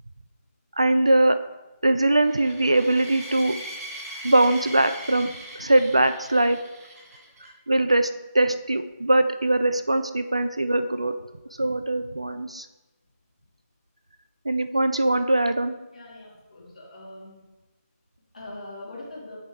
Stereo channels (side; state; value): both; inverted; correlation -0.91